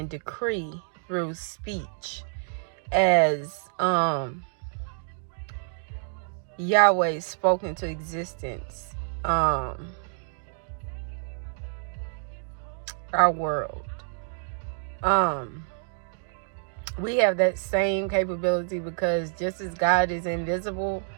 decree through speech, as Yahweh spoke into existence our world. We have that same capability, because just as God is invisible,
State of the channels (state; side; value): silent; left; digital silence